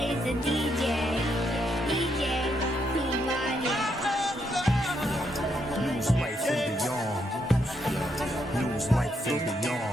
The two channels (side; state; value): both; normal; correlation 0.77